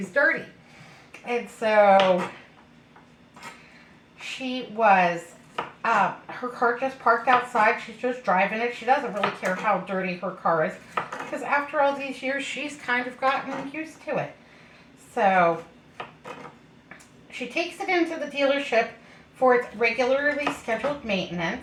dirty. And so she was, her car just parked outside. She's just driving it. She doesn't really care how dirty her car is, because after all these years, she's kind of gotten used to it. So she takes it into the dealership for its regularly scheduled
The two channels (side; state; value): both; identical; correlation 1.00